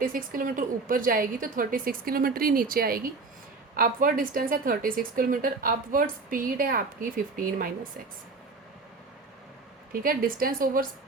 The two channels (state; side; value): quieter; left; 4.0 dB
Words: किलोमीटर ऊपर जाएगी तो 36 किलोमीटर ही नीचे आएगी। अपवर्ड डिस्टेंस है 36 किलोमीटर, अपवर्ड स्पीड है आपकी 15 माइनस एक्स। ठीक है, डिस्टेंस ओवर